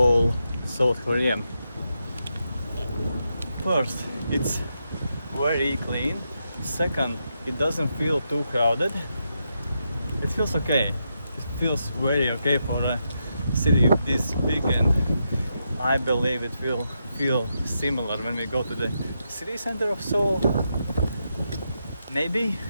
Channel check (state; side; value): inverted; both; correlation -0.84